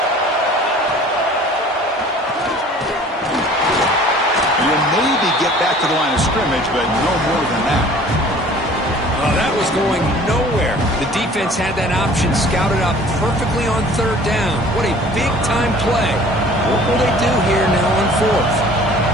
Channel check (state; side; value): normal; both; correlation 0.49